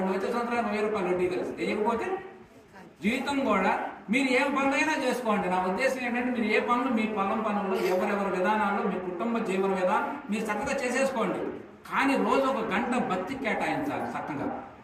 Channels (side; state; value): both; identical; correlation 1.00